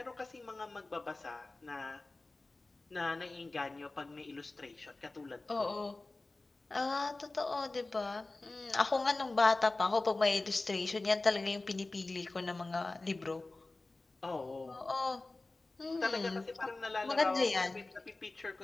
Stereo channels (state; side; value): quieter; right; 3.2 dB